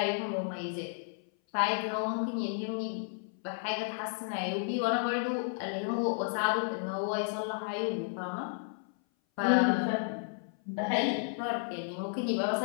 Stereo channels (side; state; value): right; silent; 56 dB below the other